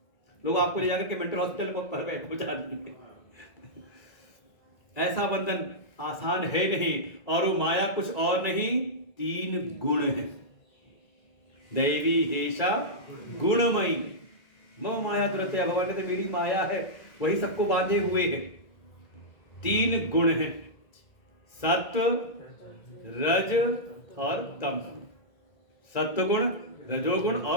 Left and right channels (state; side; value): late; right; 1.9 ms